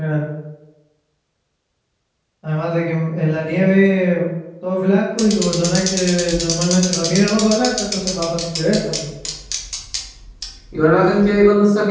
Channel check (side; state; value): both; identical; correlation 1.00